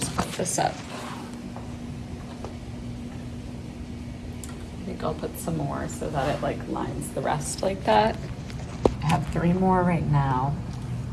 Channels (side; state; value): both; identical; correlation 1.00